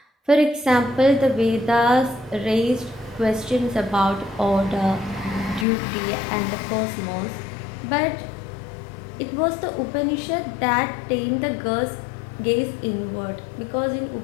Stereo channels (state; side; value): drops out; right; at 5.7 s